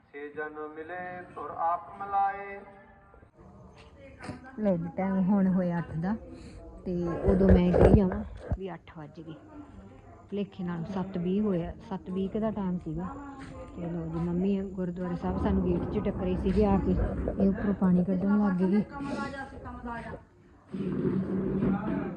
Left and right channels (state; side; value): identical; both; correlation 1.00